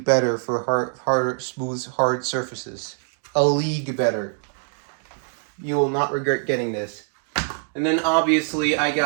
better for smooth, hard surfaces. A league better. You will not regret getting this. And then obviously I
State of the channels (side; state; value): left; silent; 63 dB below the other